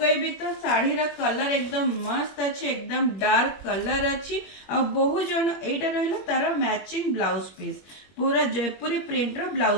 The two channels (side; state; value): right; late; 21 ms